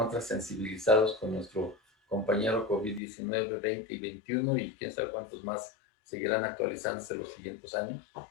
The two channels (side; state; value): right; drops out; at 3.0 s